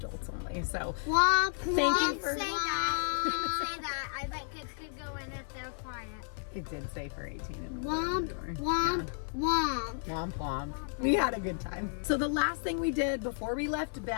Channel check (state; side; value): silent; right; 56 dB below the other